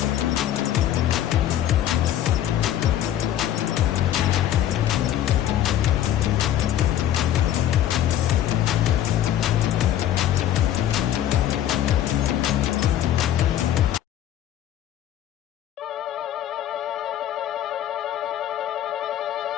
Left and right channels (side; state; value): right; quieter; 11.6 dB